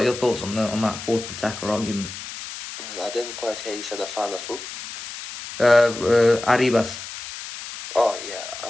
your thoughts on that fourth attacker argument? Well, I didn't quite hear you said a fan of who? Arribas. Oh yeah,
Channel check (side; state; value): left; noise; hiss, 10 dB below the sound